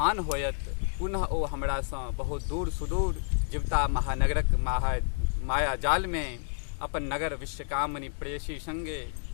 होयत, पुनः ओ हमरा सँ बहुत दूर सुदूर जीवता महानगरक माया जाल में अपन नगर विश्वकामनी प्रेयसी संगे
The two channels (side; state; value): right; silent; digital silence